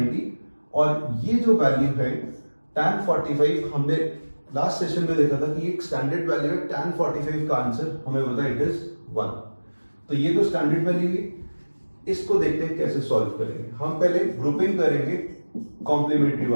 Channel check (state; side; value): inverted; both; correlation -1.00